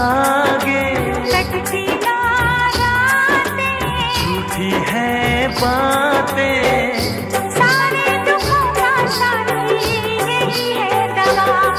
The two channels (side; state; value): both; identical; correlation 1.00